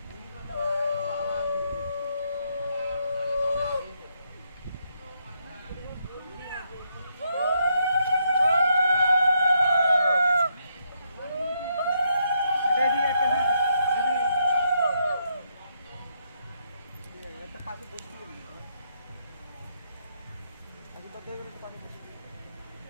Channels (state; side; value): inverted; both; correlation -0.77